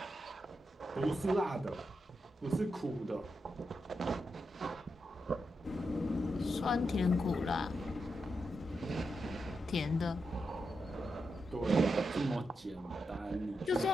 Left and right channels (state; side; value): normal; both; correlation 0.86